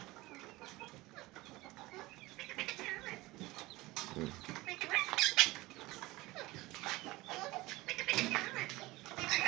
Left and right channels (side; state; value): left; quieter; 20.1 dB